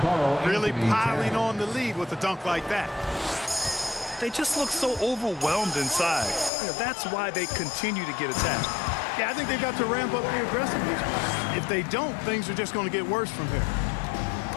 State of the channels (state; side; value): drops out; right; at 6.5 s